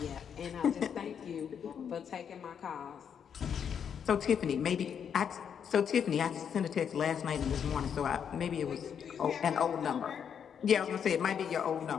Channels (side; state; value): right; quieter; 7.8 dB